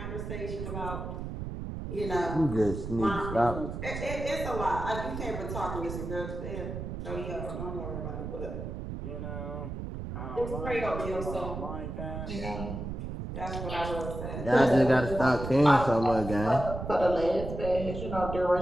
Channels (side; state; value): right; noise; rumble, 6 dB below the sound